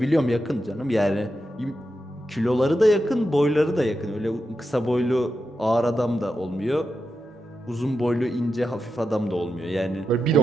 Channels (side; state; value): both; normal; correlation 0.88